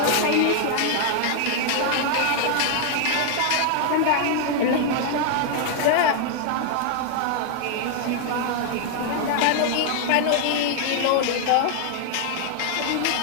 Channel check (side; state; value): both; different; correlation 0.00